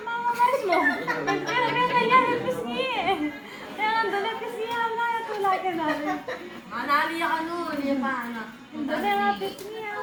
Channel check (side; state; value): both; identical; correlation 1.00